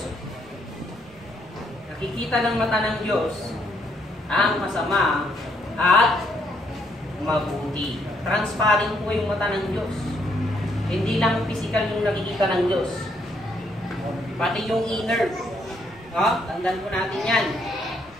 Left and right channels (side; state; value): both; normal; correlation 0.72